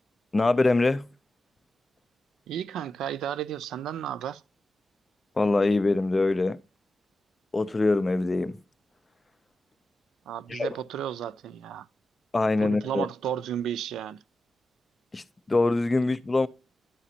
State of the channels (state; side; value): normal; both; correlation 0.92